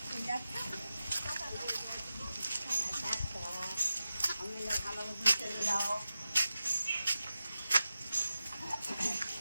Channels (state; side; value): inverted; both; correlation -0.93